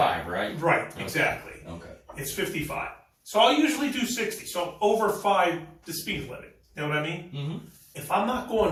right? Right, exactly. Okay. It's 55. So I'll usually do 60. So over 5 the speed limit. You know what I mean? Mm-hmm. If I'm not going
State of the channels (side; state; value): both; identical; correlation 1.00